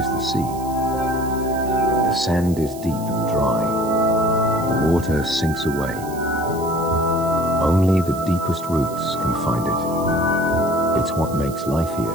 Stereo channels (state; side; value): noise; right; hiss, 17 dB below the sound